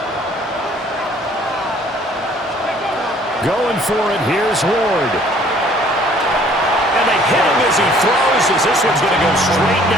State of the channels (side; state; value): both; normal; correlation 0.57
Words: Going for it, here's Ward. And they hit him as he throws, as this one's going to go straight